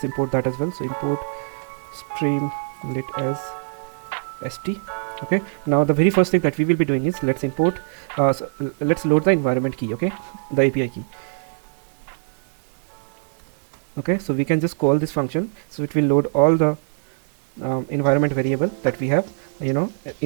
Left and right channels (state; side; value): silent; left; digital silence